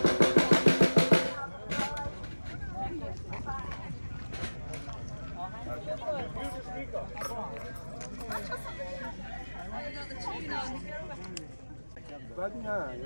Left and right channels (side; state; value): both; inverted; correlation -1.00